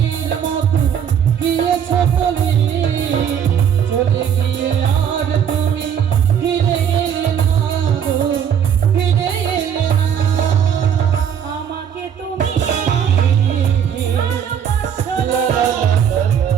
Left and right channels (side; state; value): left; quieter; 8.4 dB